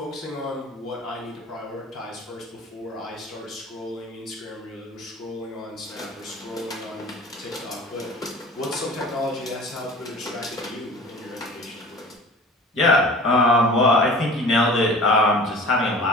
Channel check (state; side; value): normal; both; correlation 0.42